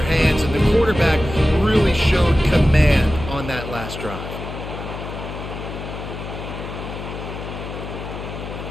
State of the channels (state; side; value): noise; left; hum, 9 dB below the sound